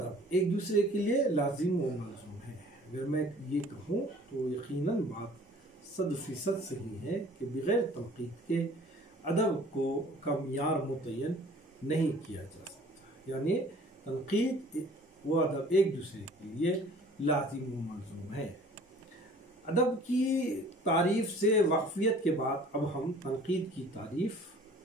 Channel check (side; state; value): both; normal; correlation 0.50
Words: ایک دوسرے کے لیے لازم و ملزوم ہے۔ اگر میں یہ کہوں تو یقیناً بات 100% صحیح ہے کہ بغیر تنقید کے ادب کا معیار متعین نہیں کیا جا سکتا، یعنی تنقید و ادب ایک دوسرے کے لیے لازم و ملزوم ہے۔ ادب کی تعریف سے واقفیت کے بعد اب ہم تنقید کی تعریف،